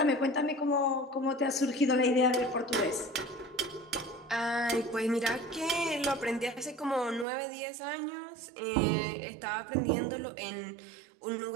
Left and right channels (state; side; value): drops out; left; at 7.2 s